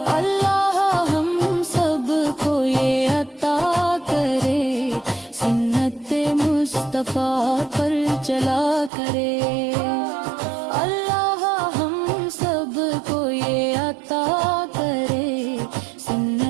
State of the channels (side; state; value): left; drops out; at 8.9 s